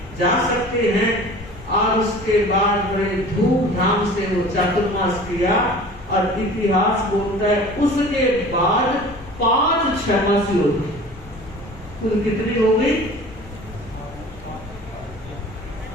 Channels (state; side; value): noise; left; rumble, 18 dB below the sound